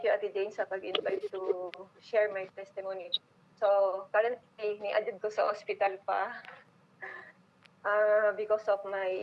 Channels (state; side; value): identical; both; correlation 1.00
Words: Jane sa pag-invite to share my testimony. So, currently, ni-adjud ko sa hospital pa because of